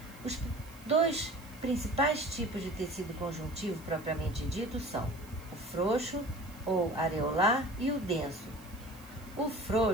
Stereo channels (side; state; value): right; noise; hiss, 22 dB below the sound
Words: Os 2 principais tipos de tecido conjuntivo propriamente dito são o frouxo ou areolar e o denso. O